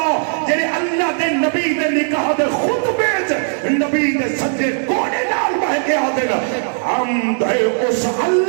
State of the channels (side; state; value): left; silent; digital silence